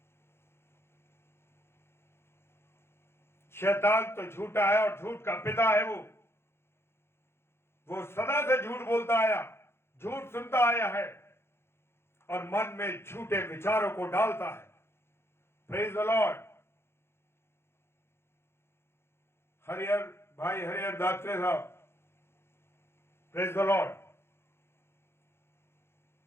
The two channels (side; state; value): right; late; 0.12 ms